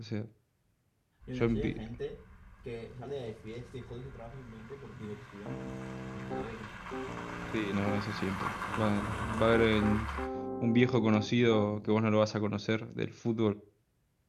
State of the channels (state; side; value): identical; both; correlation 1.00